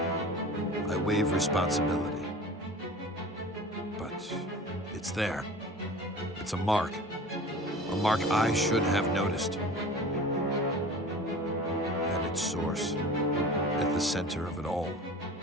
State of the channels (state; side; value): normal; both; correlation 0.39